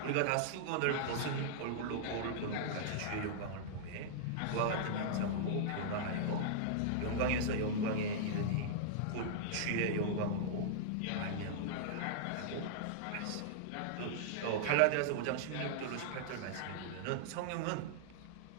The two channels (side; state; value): both; different; correlation -0.02